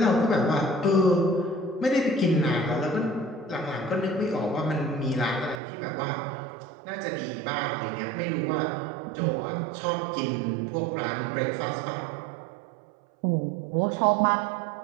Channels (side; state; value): left; drops out; at 5.6 s